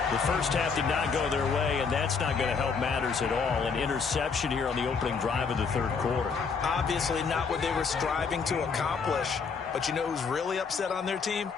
The first half did not go their way, and that's not going to help matters at all. An interception here on the opening drive of the third quarter. Obviously not what they were striving to accomplish. But you know who's really upset on their team?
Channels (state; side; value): quieter; right; 5.4 dB